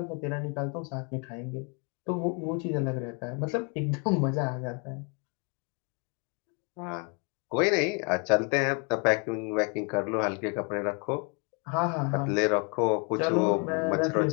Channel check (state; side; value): quieter; right; 35.4 dB